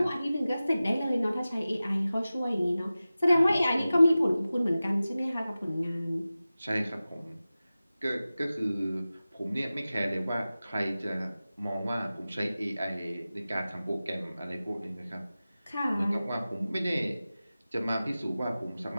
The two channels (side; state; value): both; inverted; correlation -0.96